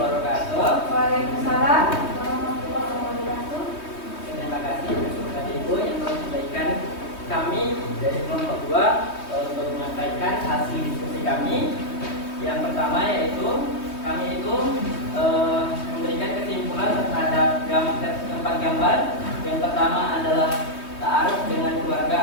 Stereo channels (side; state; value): right; late; 3.2 ms